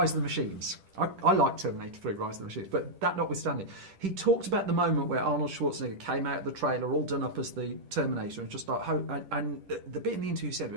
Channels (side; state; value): left; late; 10 ms